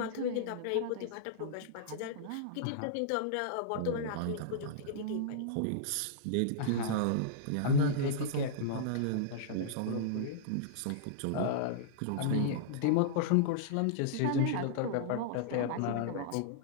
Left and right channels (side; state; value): both; different; correlation -0.02